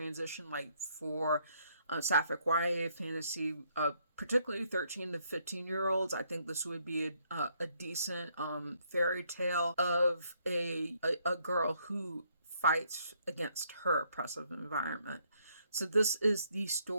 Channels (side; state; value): both; inverted; correlation -0.70